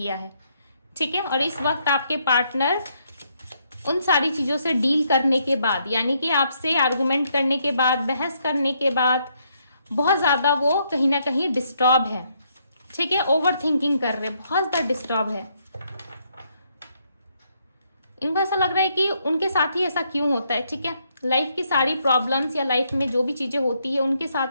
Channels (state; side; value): inverted; both; correlation -0.74